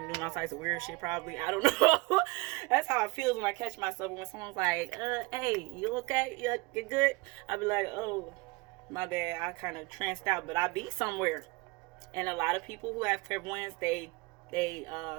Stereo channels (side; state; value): left; quieter; 24.9 dB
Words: and doing all types of weird shit probably. I don't know. That's how it feels when I catch myself. When someone's like, hey, you okay? You good? I'll be like, oh, my bad. I kind of tranced out, but I be somewhere. And a lot of people who have clairvoyance, they